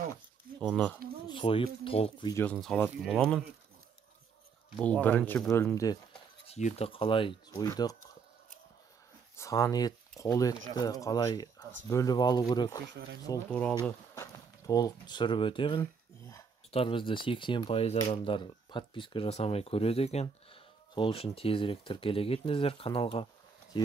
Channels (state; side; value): quieter; left; 5.7 dB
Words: Соны сойып толық видеосын салатын боламын. Бұл бірінші бөлімде сиырды қалай сойдық, сан ет, қол етті қалай бөліп алу керек, сол туралы толық түсіріп өтемін. Бізді 80% адамдар подписка жасамай көреді екен. Сол үшін тезірек тіркеле кетіңіздер каналға.